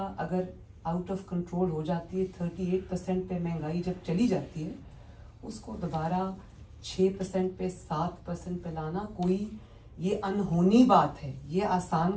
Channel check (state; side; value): identical; both; correlation 1.00